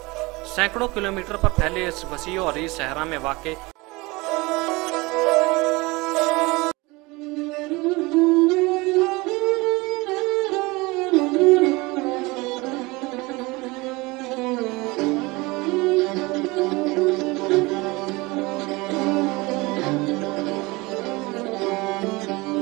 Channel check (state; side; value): quieter; left; 23.6 dB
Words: सैकड़ों किलोमीटर पर फैले इस वसी और अरीज सहरा में वाक़